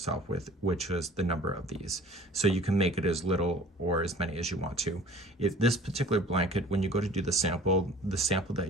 with, which is the number of these. So you can make it as little or as many as you want to. If this particular blanket, when you go to do the sample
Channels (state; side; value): normal; both; correlation 0.48